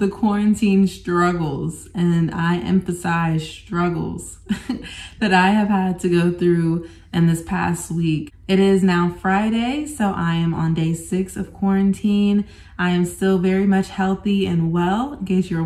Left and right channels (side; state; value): both; identical; correlation 1.00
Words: quarantine struggles, and I emphasize struggles, that I have had to go through in this past week. It is now Friday, so I am on day 6 of quarantine. I am still very much healthy and well, in case you're